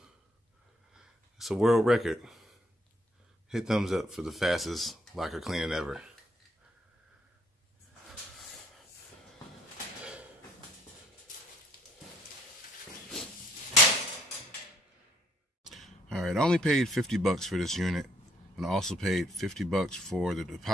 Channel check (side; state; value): both; normal; correlation 0.67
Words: It's a world record. Hit thumbs up for the fastest locker cleaning ever. Alright, I only paid $50 for this unit, and I also paid $50 for the